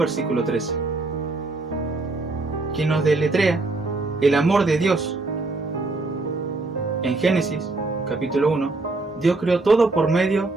13. Quien nos deletrea el amor de Dios. En Génesis, capítulo 1, Dios creó todo por medio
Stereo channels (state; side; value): quieter; left; 3.3 dB